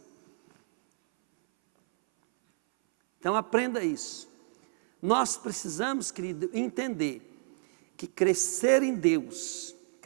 Então aprenda isso. Nós precisamos, querido, entender que crescer em Deus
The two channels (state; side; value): silent; left; 58 dB below the other